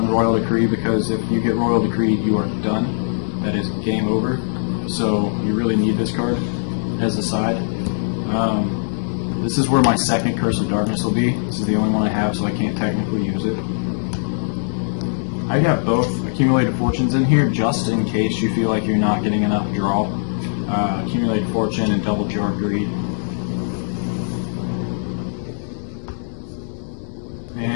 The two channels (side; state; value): right; silent; digital silence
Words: Royal Decree, because if you get Royal Decree, you are done. That is game over. So you really need this card as a side. This is where my second Curse of Darkness will be. This is the only one I have, so I can't technically use it. I got both Accumulated Fortunes in here just in case you feel like you're not getting enough draw. Accumulated Fortune and double Jar Greed.